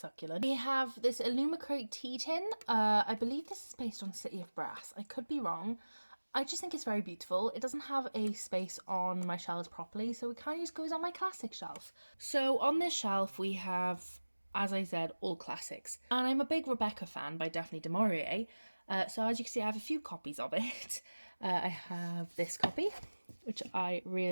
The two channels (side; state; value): both; inverted; correlation -1.00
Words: We have this Illumicrate tea tin. I believe this is based on City of Brass. I could be wrong. I just think it's very beautiful. It doesn't have a space on my shelves properly, so it kind of just goes on my classic shelf. So on this shelf we have, as I said, all classics. And I'm a big Rebecca fan by Daphne du Maurier. So as you can see, I have a few copies of it. I have this copy, which I